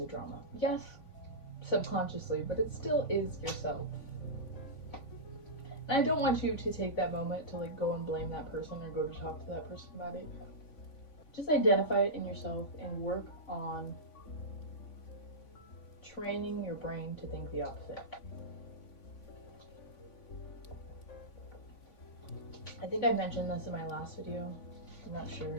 drama. Yes, subconsciously, but it still is yourself. And I don't want you to take that moment to like go and blame that person or go to talk to that person about it. Just identify it in yourself and work on training your brain to think the opposite. I think I mentioned this in my last video. I'm not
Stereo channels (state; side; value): late; right; 3.5 ms